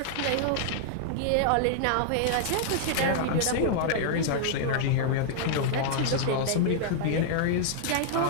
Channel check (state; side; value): different; both; correlation -0.01